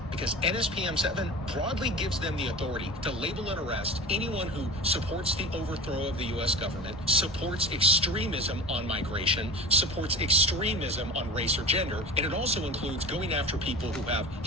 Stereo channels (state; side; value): normal; both; correlation 0.33